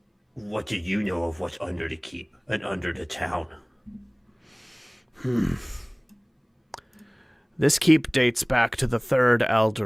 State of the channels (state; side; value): identical; both; correlation 1.00